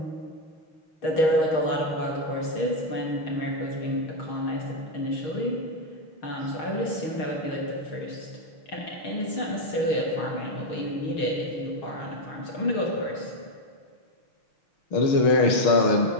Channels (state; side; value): late; right; 6.4 ms